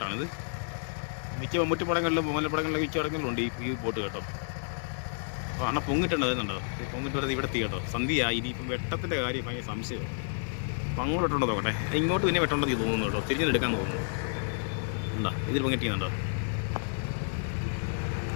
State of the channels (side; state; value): right; silent; digital silence